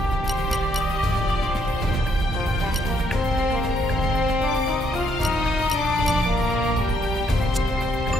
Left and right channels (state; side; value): normal; both; correlation 0.72